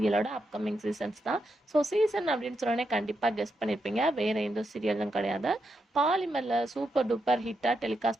அப்கமிங் சீசன்ஸ் தான். ஸோ சீசன் அப்படின்னு சொன்னோடனே கண்டிப்பாக கெஸ் பண்ணியிருப்பீங்க, வேறு எந்த சீரியலும் கிடையாது. பாலிமரில் சூப்பர் டூப்பர் ஹிட்டாக டெலிகாஸ்ட்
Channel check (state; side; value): normal; both; correlation 0.84